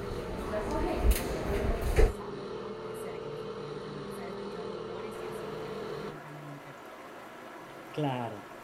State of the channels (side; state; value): both; identical; correlation 1.00